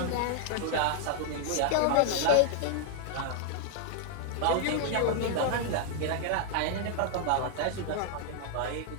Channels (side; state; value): both; different; correlation 0.00